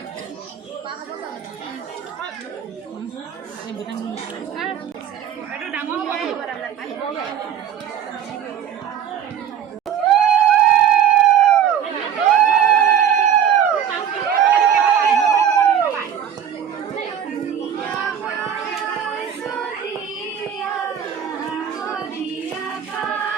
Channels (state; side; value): quieter; left; 8.8 dB